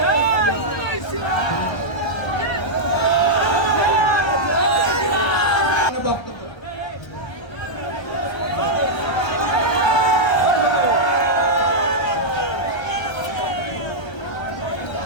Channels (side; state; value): right; late; 1.3 ms